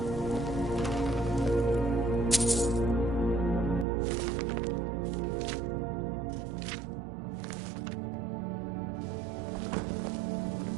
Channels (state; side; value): drops out; left; at 3.9 s